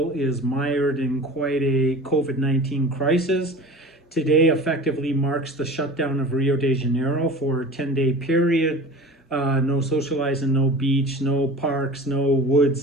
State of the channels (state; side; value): normal; both; correlation 0.38